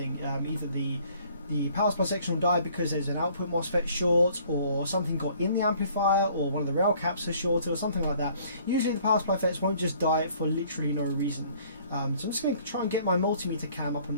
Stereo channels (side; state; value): both; inverted; correlation -0.57